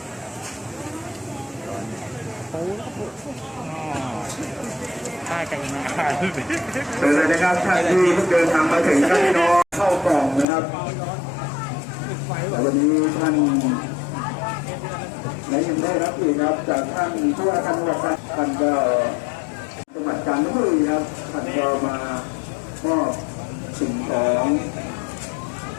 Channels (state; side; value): drops out; right; at 10.5 s